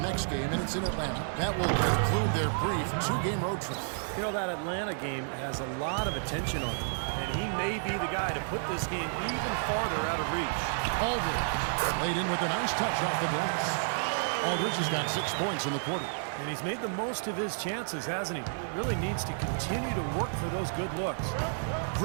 game, and it's in Atlanta. That will conclude their brief 2-game road trip. You know, that Atlanta game has a lot of attention on him, and he may be the guy to put this game even farther out of reach. Aldridge laid in with a nice touch off the glass. Aldridge has got 6 points in the quarter. And he's made the most of his chances, hasn't he? He really needs to continue to work for those good looks.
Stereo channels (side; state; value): left; silent; digital silence